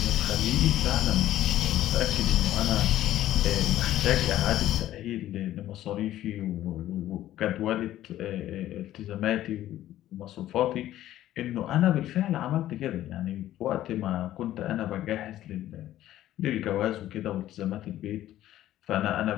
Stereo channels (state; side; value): quieter; right; 13.4 dB